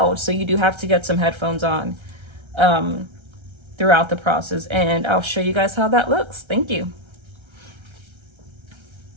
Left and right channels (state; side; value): late; left; 1.3 ms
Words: so you do have to get some headphones on throughout the process, and I'll show you guys how that looks. Thank you.